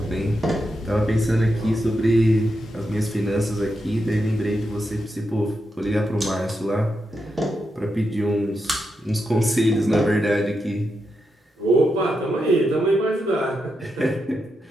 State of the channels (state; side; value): normal; both; correlation 0.85